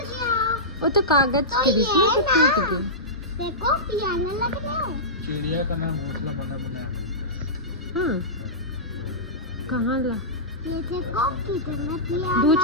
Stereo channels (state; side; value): normal; both; correlation -0.16